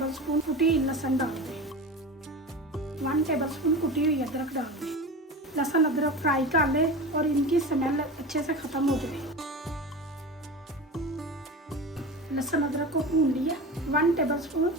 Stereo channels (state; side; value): normal; both; correlation 0.29